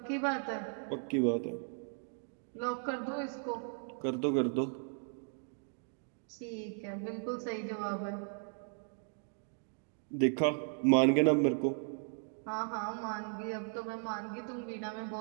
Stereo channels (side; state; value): left; silent; 54 dB below the other